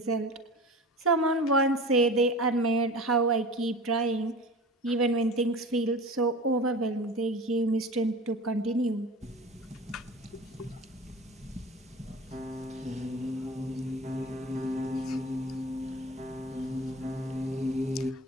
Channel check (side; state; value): both; normal; correlation 0.36